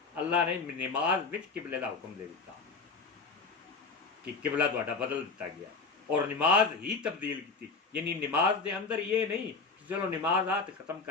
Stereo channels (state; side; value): quieter; right; 4.4 dB